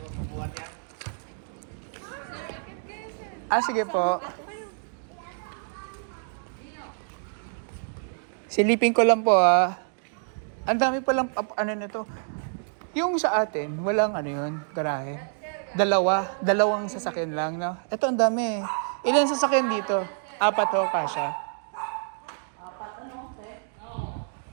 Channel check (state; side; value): silent; left; digital silence